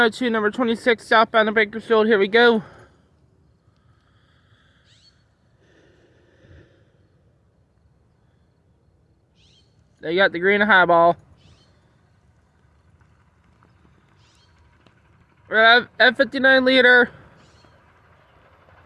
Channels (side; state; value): both; identical; correlation 1.00